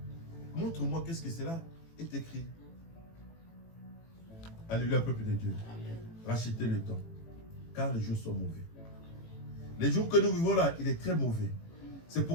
montre-moi qu'est-ce que c'est là, est écrit. Alléluia, peuple de Dieu. Amen. Rachetez le temps, car les jours sont mauvais. Les jours que nous vivons là, il est très mauvais. C'est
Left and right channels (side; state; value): right; late; 18 ms